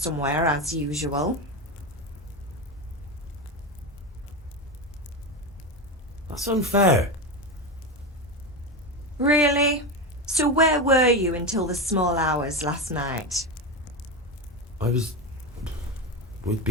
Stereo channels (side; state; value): both; normal; correlation 0.17